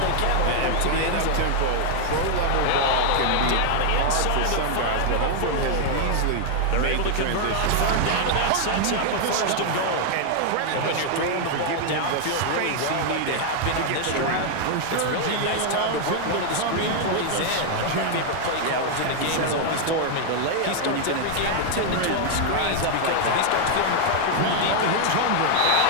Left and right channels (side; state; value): both; different; correlation 0.00